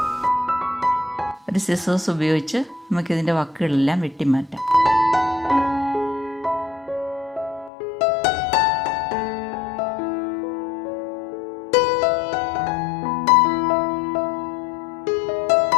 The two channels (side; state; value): right; drops out; at 7.7 s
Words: ഒരു സിസേഴ്സ് ഉപയോഗിച്ച് നമുക്കിതിൻ്റെ വക്കുകളെല്ലാം വെട്ടി മാറ്റാം.